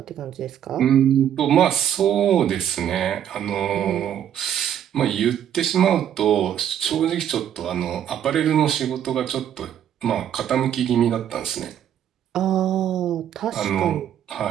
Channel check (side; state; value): left; quieter; 9.9 dB